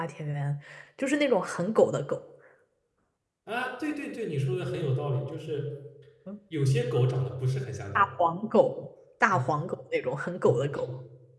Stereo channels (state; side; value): identical; both; correlation 1.00